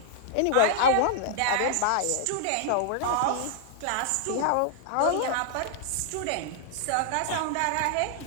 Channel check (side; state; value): both; different; correlation -0.01